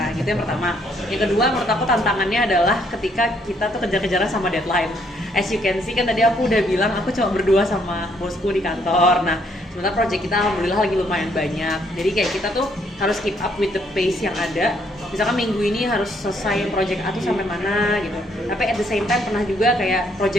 gitu yang pertama. Yang kedua menurut aku tantangannya adalah ketika kita tuh kejar-kejaran sama deadline. As you can see kan tadi aku udah bilang aku cuma berdua sama bosku di kantor. Nah sementara project kita alhamdulillah lagi lumayan banyak, jadi kayak kita tuh harus keep up with the pace yang ada. Misalkan minggu ini harus selesai project A tuh sampai mana gitu, tapi at the same time pernah juga kayak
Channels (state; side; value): normal; both; correlation 0.69